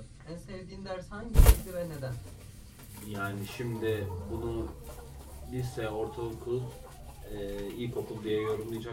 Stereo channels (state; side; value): identical; both; correlation 1.00